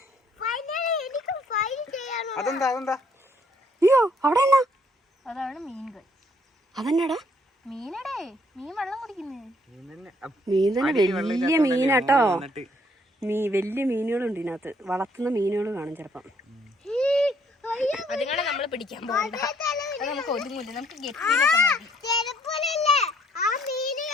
അതെന്താ? അയ്യോ, അവിടെ എന്നാ? അതാണ് മീനുകൾ. അതെന്നാടാ? മീനടേ, മീൻ വെള്ളം കുടിക്കുന്നേ. മീൻ തന്നെ വലിയ മീനാട്ടോ. വലിയ മീനുകളുണ്ട് ഇതിനകത്ത്. വളർത്തുന്ന മീനുകൾ കാണും ചിലപ്പം. അതുങ്ങളെ നമ്മൾ പിടിക്കാൻ പോകണ്ട. അത് നമുക്ക് ഒതുങ്ങില്ല. നമുക്ക്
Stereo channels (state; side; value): normal; both; correlation 0.66